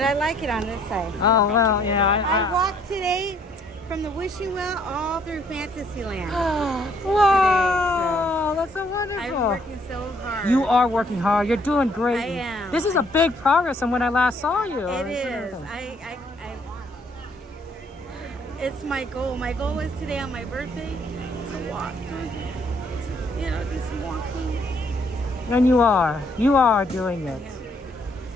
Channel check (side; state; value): both; normal; correlation 0.65